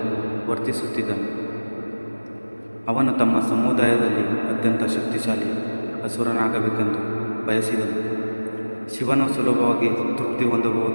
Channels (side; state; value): both; inverted; correlation -1.00